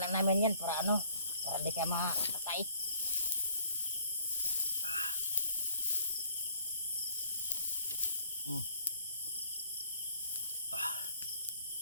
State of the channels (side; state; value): both; inverted; correlation -0.61